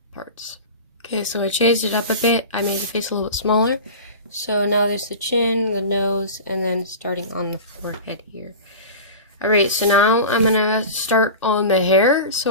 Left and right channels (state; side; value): inverted; both; correlation -0.32